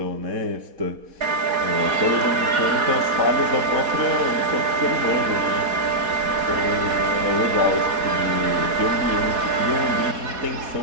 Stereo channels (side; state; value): left; late; 4.1 ms